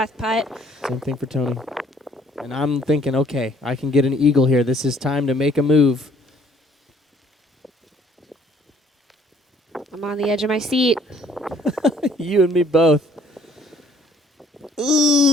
putt. Same thing for Tony. And I'm thinking, okay, I can get an eagle here. This is time to make a move. I'm on the edge of my seat. You and me both.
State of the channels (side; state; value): both; normal; correlation 0.60